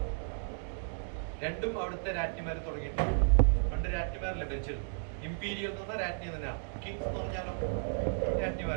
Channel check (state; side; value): silent; left; digital silence